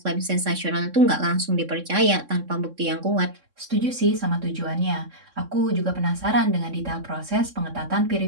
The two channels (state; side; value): late; left; 3.6 ms